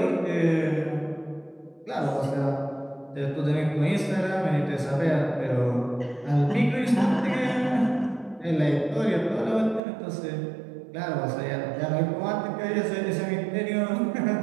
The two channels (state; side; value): drops out; left; at 9.8 s